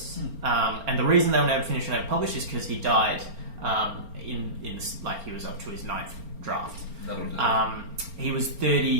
And the reason they were never finished and never published is because he died he was up to his 9th draft. He was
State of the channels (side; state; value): left; late; 4.4 ms